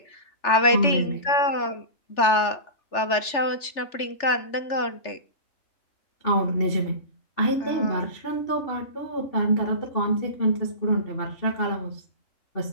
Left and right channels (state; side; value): late; right; 3.4 ms